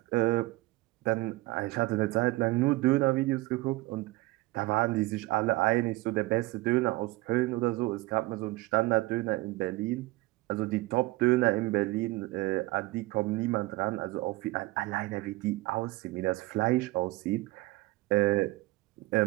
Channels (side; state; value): left; quieter; 20.2 dB